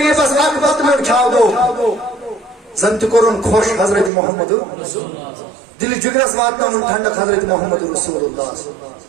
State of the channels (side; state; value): left; drops out; at 4.1 s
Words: اکھ بتہٕ میوٚٹ کھیاو زن تہِ کوٚرُن خۄش حضرت محمد دل جگرس واتناوُن ٹھنڈک حضرت محمد رسول اللہ